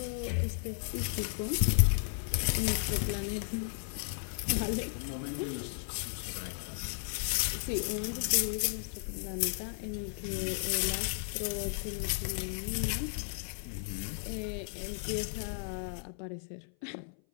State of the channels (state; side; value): silent; right; 55 dB below the other